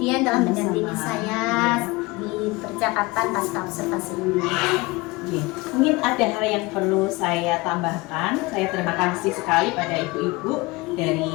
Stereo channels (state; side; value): quieter; right; 23.0 dB